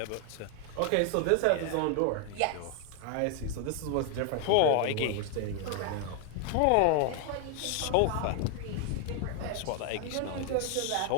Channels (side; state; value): both; different; correlation 0.00